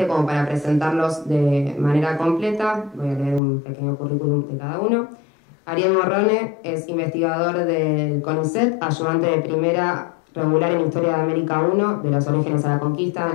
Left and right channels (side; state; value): right; drops out; at 3.4 s